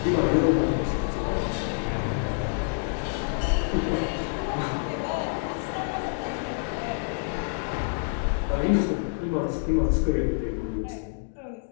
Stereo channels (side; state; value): right; silent; digital silence